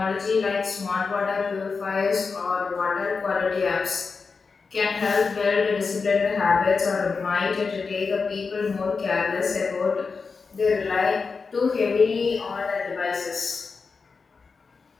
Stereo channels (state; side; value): quieter; right; 4.8 dB